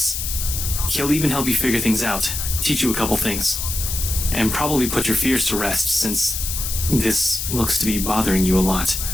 He'll even help you figure things out, teach you a couple things, and probably put your fears to rest since this looks to be bothering you a lot.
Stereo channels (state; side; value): noise; left; hiss, 3 dB below the sound